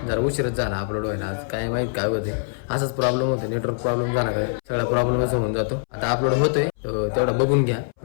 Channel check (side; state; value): right; silent; 63 dB below the other